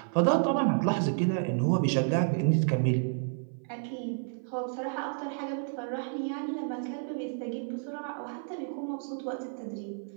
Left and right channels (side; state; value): left; silent; 55 dB below the other